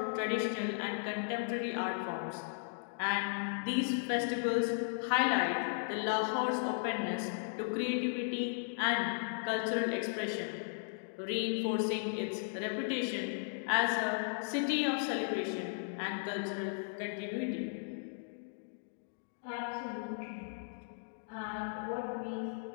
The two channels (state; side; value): silent; right; digital silence